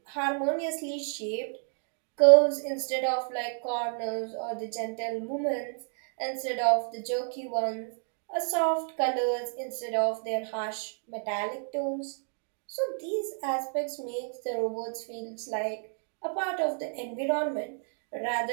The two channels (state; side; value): silent; left; 58 dB below the other